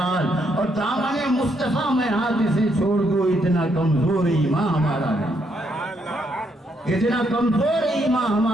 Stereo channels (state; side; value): normal; both; correlation 0.75